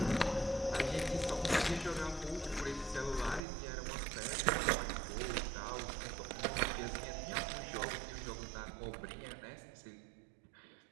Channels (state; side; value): drops out; left; at 3.4 s